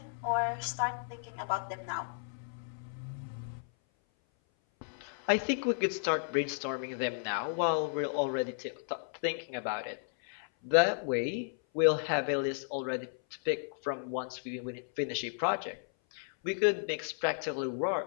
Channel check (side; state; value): right; silent; 55 dB below the other